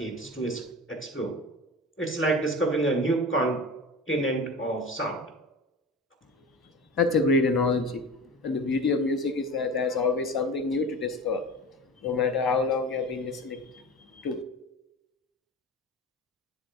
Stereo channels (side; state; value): both; normal; correlation 0.33